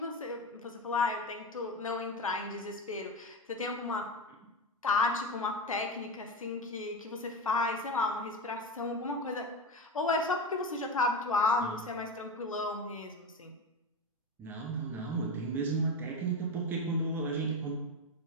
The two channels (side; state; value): both; normal; correlation 0.19